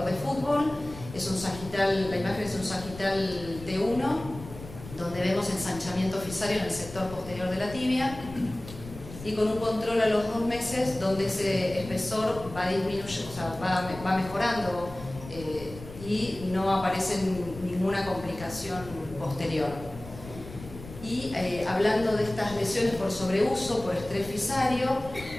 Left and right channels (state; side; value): noise; left; rumble, 14 dB below the sound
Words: de fútbol, es un sagital, la imagen es un sagital T1, donde vemos ensanchamiento fisario en el sector posterior de la tibia. y con un control a los 2 meses donde ese espesor va disminuyendo, o sea, va mejorando y no aparece ninguna complicación posterior. Y hablando de estas lesiones por sobreuso, por estrés fisario,